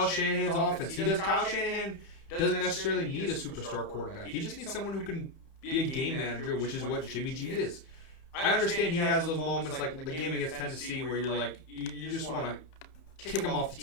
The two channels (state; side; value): late; right; 31 ms